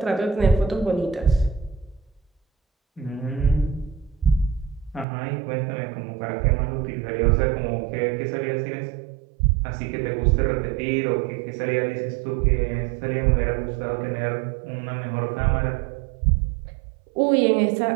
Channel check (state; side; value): drops out; left; at 5.1 s